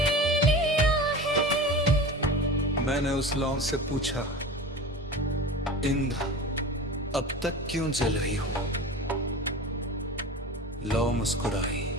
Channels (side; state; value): both; normal; correlation 0.33